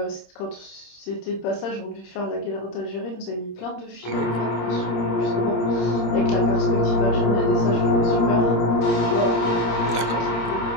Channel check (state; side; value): late; right; 26 ms